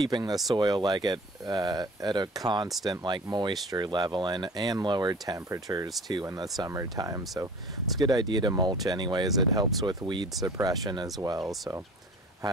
the soil like at a constant moisture level and lower temperatures too in the summertime. So it's a good idea to mulch anyways. It helps with weed suppression as well. So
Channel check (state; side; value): normal; both; correlation 0.44